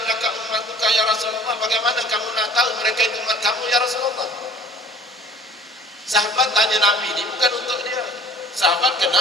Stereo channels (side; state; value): both; normal; correlation 0.49